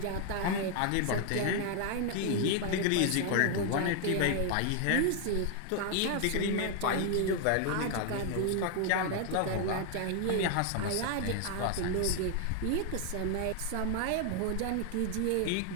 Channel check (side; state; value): both; different; correlation 0.00